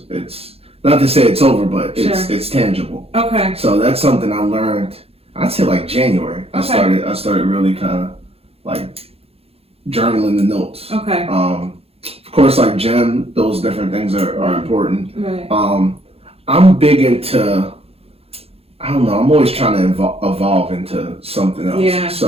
it's not to say it's over, but it's tangible. Okay. So that's something I learned. I'd say like January. I started really kind of like journaling the notes. Okay. Of course, like GEM, those different things are important. Right. I'm big into, I don't know, I'm always trying to evolve into something else. Yeah.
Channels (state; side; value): late; left; 0.29 ms